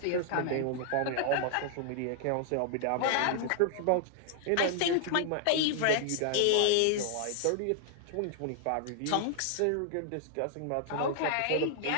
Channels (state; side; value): different; both; correlation -0.01